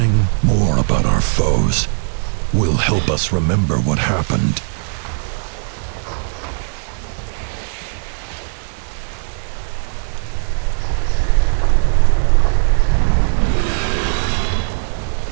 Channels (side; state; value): left; silent; 58 dB below the other